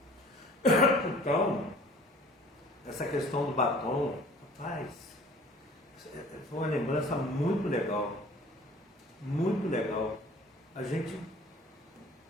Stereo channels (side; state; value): both; normal; correlation 0.49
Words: Então, essa questão do batom, rapaz, foi uma lembrança muito legal. Muito legal. A gente